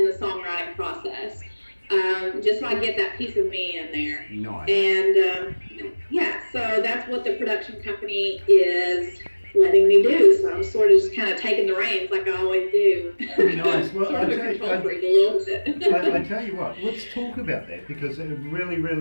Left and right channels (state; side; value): inverted; both; correlation -1.00